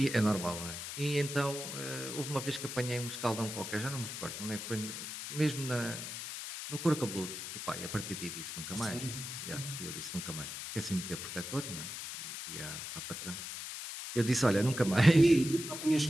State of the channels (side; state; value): left; noise; hiss, 7 dB below the sound